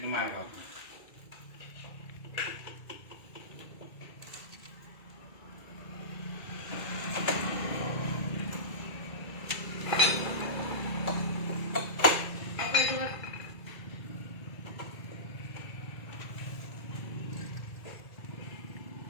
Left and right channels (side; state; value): right; late; 2.3 ms